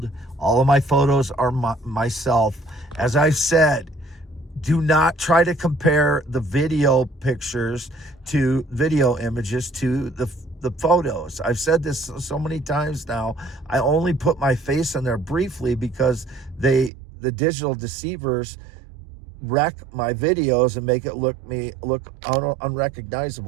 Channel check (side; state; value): left; drops out; at 16.9 s